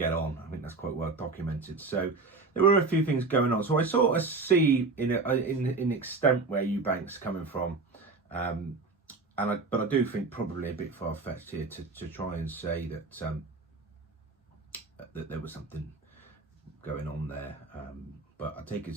on. I think that's quite well documented. So there were a few things going on. So I sort of see in extent where Eubank's coming from, but I do think probably a bit far-fetched here to try and say that that there was something going on there. But I take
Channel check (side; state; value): left; quieter; 3.9 dB